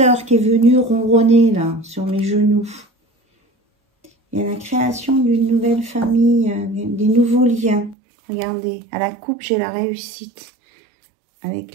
qui est venu ronronner, là, sur mes genoux. Il y a la création d'une nouvelle famille, des nouveaux liens. Regardez, à la coupe, j'ai la réussite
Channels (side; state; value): left; drops out; at 8.0 s